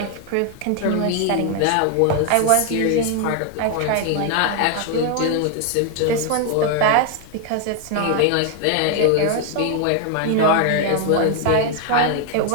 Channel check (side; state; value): both; different; correlation 0.00